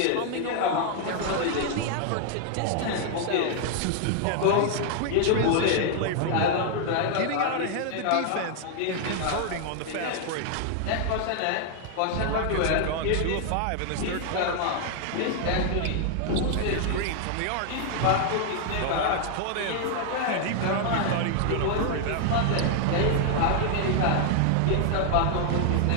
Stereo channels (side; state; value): both; different; correlation 0.00